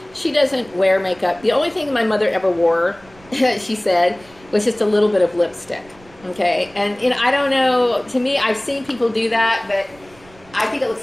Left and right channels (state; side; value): noise; right; rumble, 26 dB below the sound